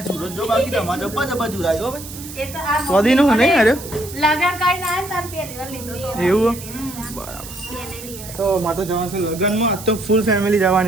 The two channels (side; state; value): right; noise; hiss, 13 dB below the sound